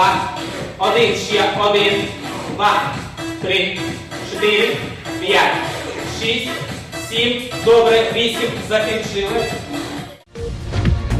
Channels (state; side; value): identical; both; correlation 1.00